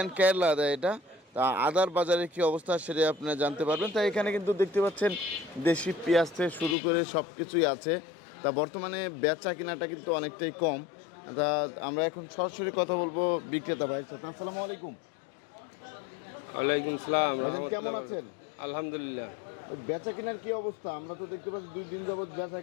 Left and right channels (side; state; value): right; drops out; at 6.8 s